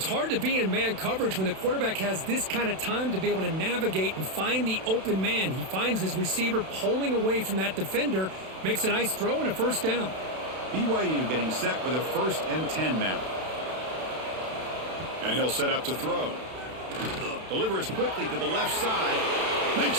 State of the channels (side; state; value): left; late; 32 ms